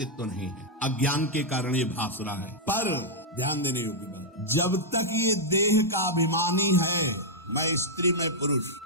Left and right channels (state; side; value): normal; both; correlation -0.05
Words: नहीं है, अज्ञान के कारण ये भास रहा है, पर ध्यान देने योग्य बात, जब तक ये देह का अभिमानी है, मैं स्त्री मैं पुरुष,